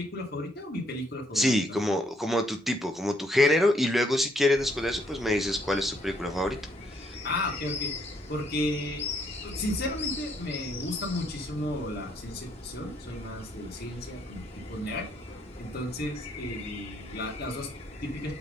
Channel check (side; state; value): both; normal; correlation 0.70